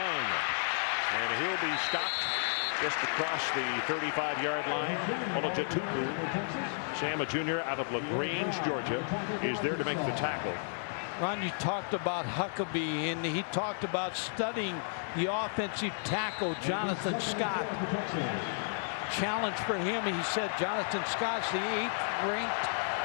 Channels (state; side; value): silent; right; digital silence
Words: and he'll be stopped just across the 35-yard line. Olajatupu, Sam, a junior out of LaGrange, Georgia, is there to make the tackle. Ron, you talked about Huckabee, and he talked about studying the offensive tackle, Jonathan Scott. Challenge for him, he said Jonathan Scott's the 8th ranked